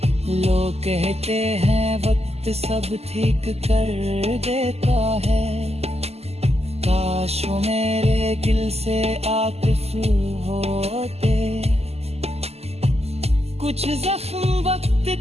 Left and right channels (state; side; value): late; left; 0.30 ms